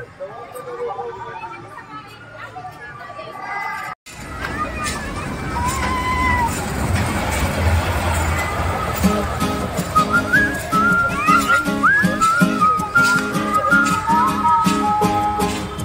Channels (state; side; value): identical; both; correlation 1.00